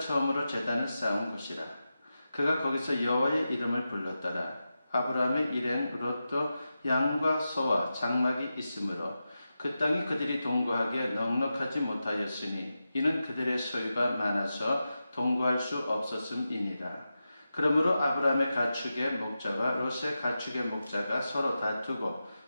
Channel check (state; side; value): inverted; both; correlation -0.91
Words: 제단을 쌓은 곳이라. 그가 거기서 여호와의 이름을 불렀더라. 아브라함의 일행 롯도 양과 소와 장막이 있으므로 그 땅이 그들이 동거하기에 넉넉하지 못하였으니 이는 그들의 소유가 많아서 동거할 수 없었음이니라. 그러므로 아브라함의 가축의 목자와 롯의 가축의 목자가 서로 다투고